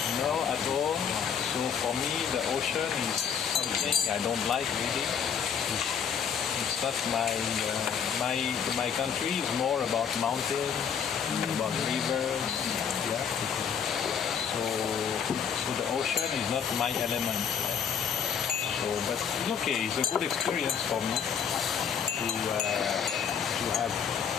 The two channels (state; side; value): quieter; right; 7.5 dB